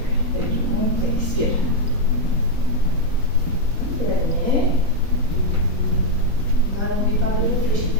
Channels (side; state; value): left; late; 3.8 ms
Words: Et je monte, expire. Dernier. N'allongez pas de l'eau, fléchis